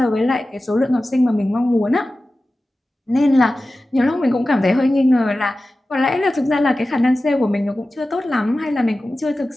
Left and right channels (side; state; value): both; normal; correlation 0.95